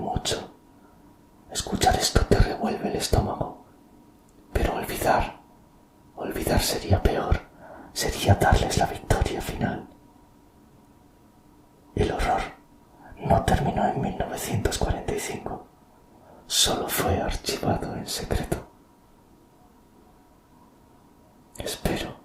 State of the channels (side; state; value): both; identical; correlation 1.00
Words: Escuchar esto te revuelve el estómago, pero olvidar sería peor, sería darles la victoria final. El horror no terminó en 1945, solo fue archivado en secreto. Espero